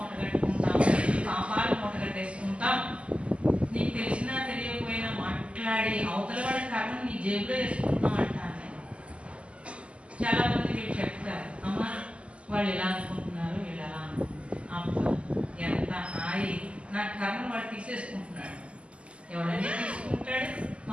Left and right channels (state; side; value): late; left; 0.057 ms